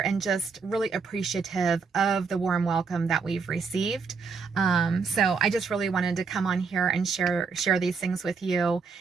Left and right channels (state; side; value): quieter; left; 5.2 dB